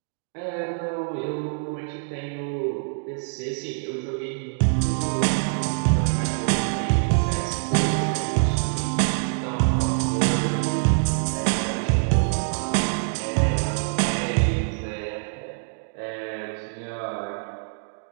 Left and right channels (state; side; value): silent; left; digital silence